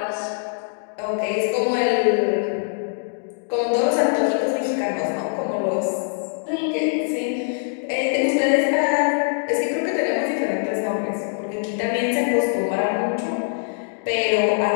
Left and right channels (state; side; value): silent; right; 64 dB below the other